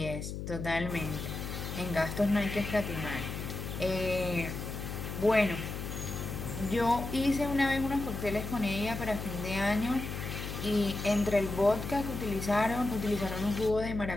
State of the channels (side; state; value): left; noise; hum, 6 dB below the sound